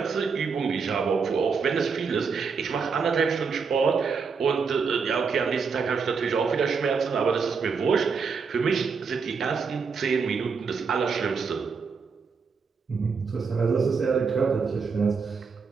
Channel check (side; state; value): left; quieter; 5.4 dB